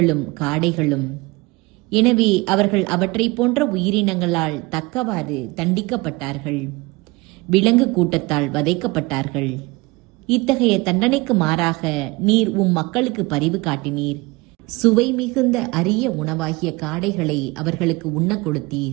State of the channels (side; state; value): left; quieter; 23.7 dB